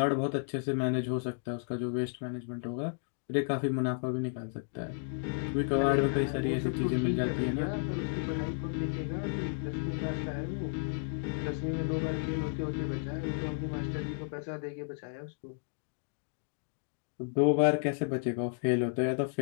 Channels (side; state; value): right; silent; digital silence